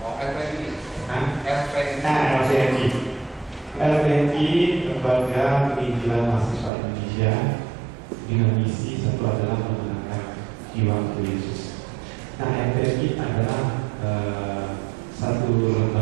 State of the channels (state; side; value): drops out; left; at 6.7 s